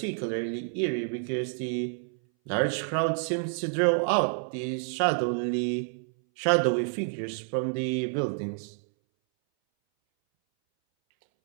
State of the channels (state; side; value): silent; left; 59 dB below the other